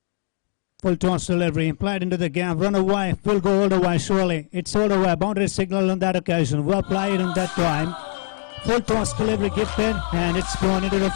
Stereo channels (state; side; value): silent; right; 64 dB below the other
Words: Full toss delivery, played into the gap, run away, will go all the way surely. It's all the way, boundary signal on that occasion, well played on that time. Full toss delivery gifted, and it's gone into the